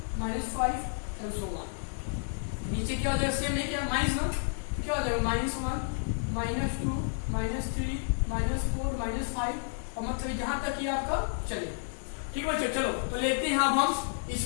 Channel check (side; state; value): right; silent; digital silence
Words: -5 एंड सो ऑन। नीचे क्या हो जाएगा सेम है क्या -1, क्या हो जाएगा -1 -2 -3 -4 -5, और मतलब जहां तक ये आपका चले। ठीक बच्चों, चलो तो लेते हैं हम इस